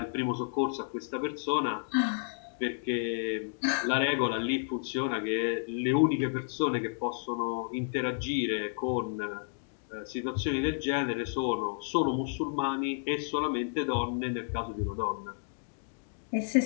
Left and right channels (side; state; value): right; silent; digital silence